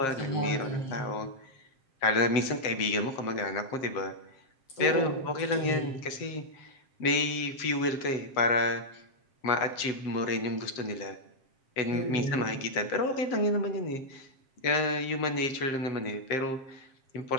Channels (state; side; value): late; right; 7.6 ms